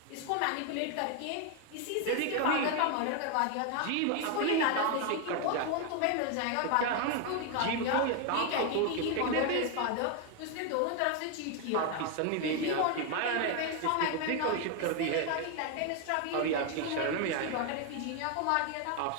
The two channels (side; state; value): both; different; correlation 0.01